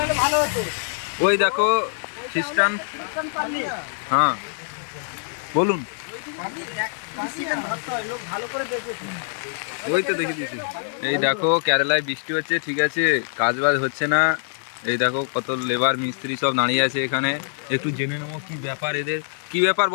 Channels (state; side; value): silent; right; 63 dB below the other